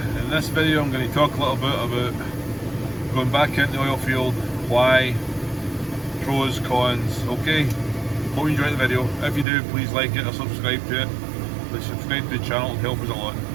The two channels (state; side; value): drops out; left; at 9.5 s